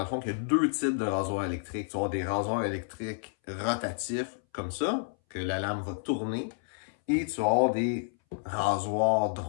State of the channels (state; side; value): silent; right; 58 dB below the other